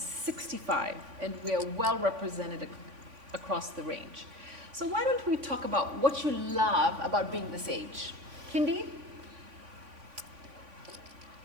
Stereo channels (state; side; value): late; left; 3.5 ms